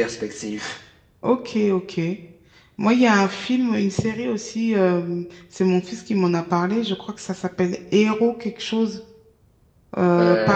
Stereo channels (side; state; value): both; identical; correlation 1.00